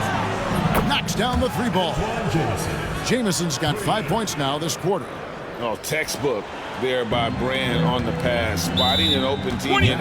Knocks down the 3 ball. Jamison's got 5 points now this quarter. Oh, textbook there by Brand on the pass. Spotting an open teammate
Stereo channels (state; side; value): identical; both; correlation 1.00